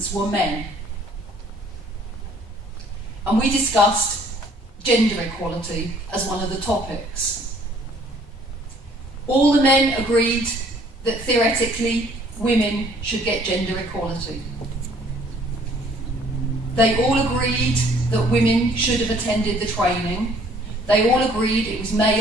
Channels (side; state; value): both; normal; correlation 0.59